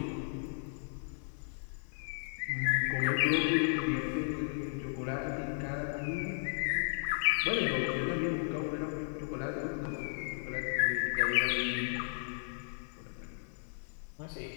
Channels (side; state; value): right; silent; digital silence